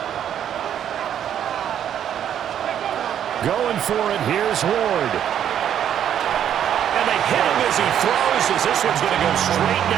Going for it, here's Ward. And they hit him as he throws, as this one's going to go straight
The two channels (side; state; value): left; quieter; 9.8 dB